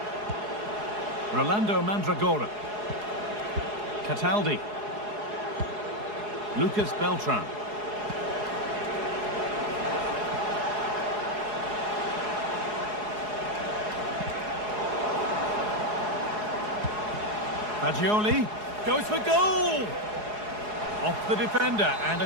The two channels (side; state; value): left; late; 4.8 ms